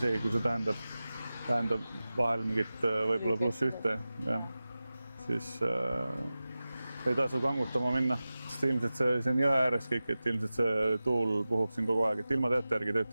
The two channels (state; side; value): inverted; both; correlation -0.96